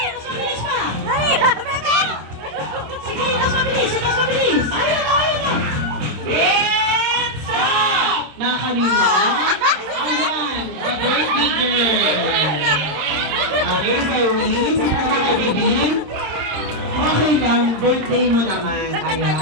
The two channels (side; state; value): left; late; 26 ms